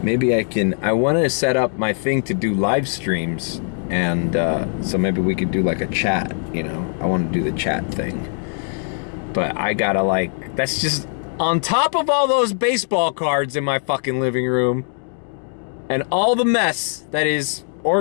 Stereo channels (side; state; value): right; silent; 65 dB below the other